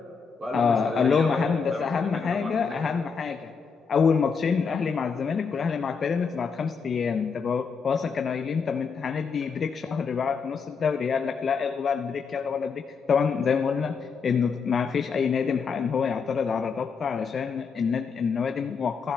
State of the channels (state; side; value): quieter; right; 5.6 dB